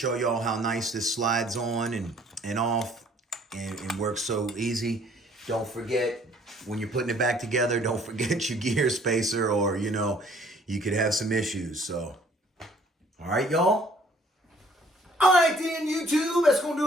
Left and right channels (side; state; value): both; normal; correlation 0.58